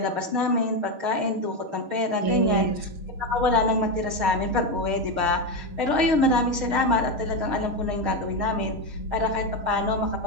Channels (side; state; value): left; late; 6.4 ms